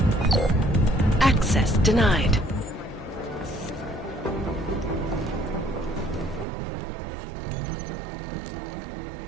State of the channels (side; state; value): left; drops out; at 6.5 s